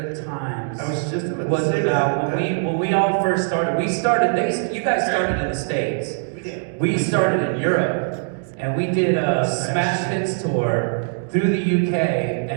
times I was just about to was say about that. when we all first started. You guys started in the States. We did. We started in Europe, and we did a Smash Hits tour through the UK,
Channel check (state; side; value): silent; left; digital silence